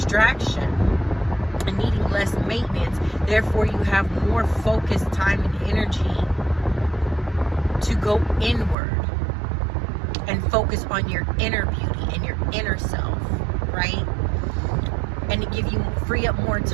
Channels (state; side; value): drops out; left; at 8.8 s